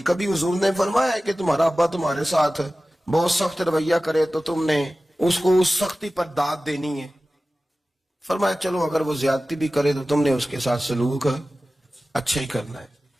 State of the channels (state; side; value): normal; both; correlation 0.96